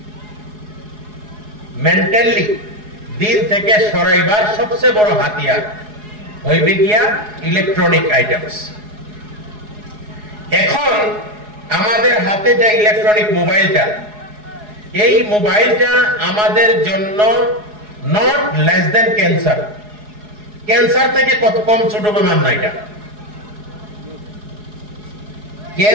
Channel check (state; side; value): late; left; 4.8 ms